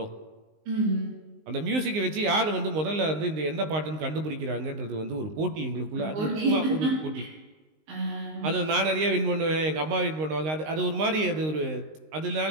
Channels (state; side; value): late; left; 19 ms